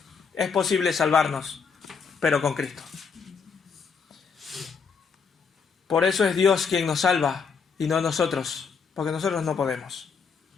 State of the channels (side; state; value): right; quieter; 5.7 dB